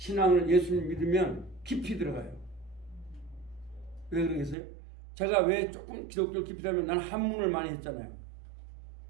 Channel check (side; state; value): left; drops out; at 4.5 s